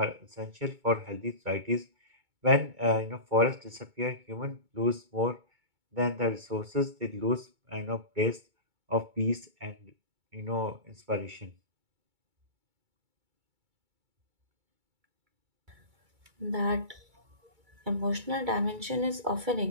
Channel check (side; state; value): left; late; 2.2 ms